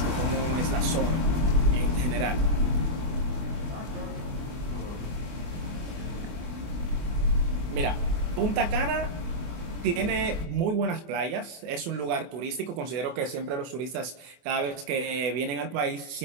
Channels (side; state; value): left; late; 24 ms